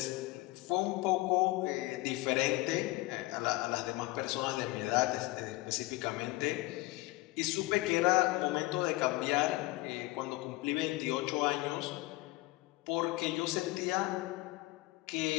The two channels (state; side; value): quieter; right; 20.5 dB